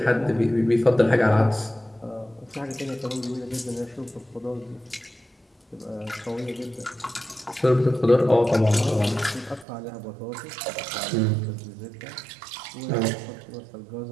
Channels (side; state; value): left; drops out; at 9.7 s